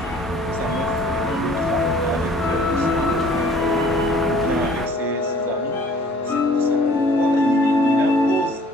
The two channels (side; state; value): both; normal; correlation 0.53